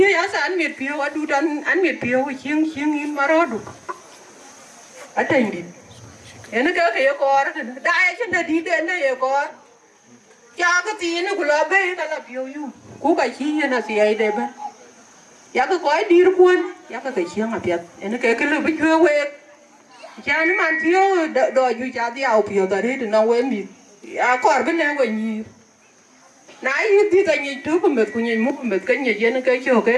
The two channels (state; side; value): identical; both; correlation 1.00